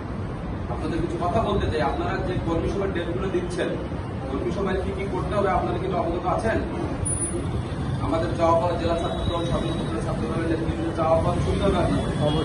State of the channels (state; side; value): identical; both; correlation 1.00